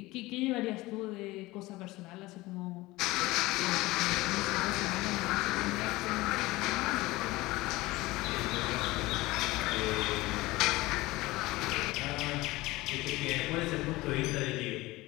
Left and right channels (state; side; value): quieter; right; 19.9 dB